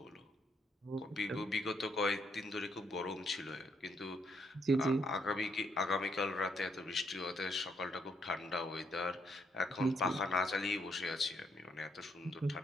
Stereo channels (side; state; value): both; normal; correlation 0.73